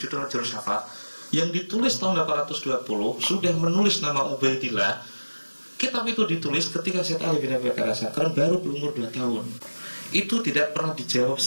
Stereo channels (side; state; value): both; inverted; correlation -1.00